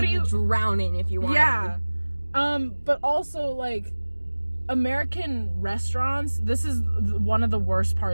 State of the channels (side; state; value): both; inverted; correlation -1.00